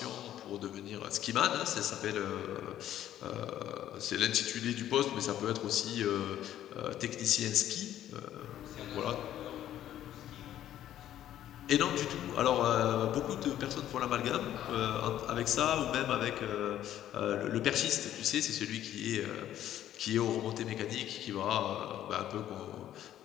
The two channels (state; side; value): quieter; right; 11.9 dB